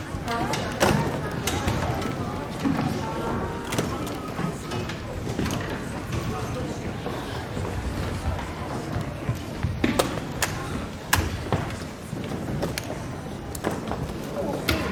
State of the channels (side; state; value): both; identical; correlation 1.00